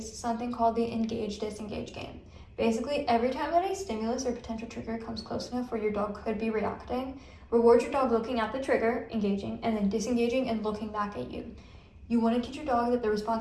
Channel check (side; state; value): both; identical; correlation 1.00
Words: something called the engage-disengage game. Basically, every time that a stimulus or potential trigger comes close enough where your dog could be reacting, reward your dog looking at the trigger, engaging, and then disengaging and looking back at you. You want to teach your dog that the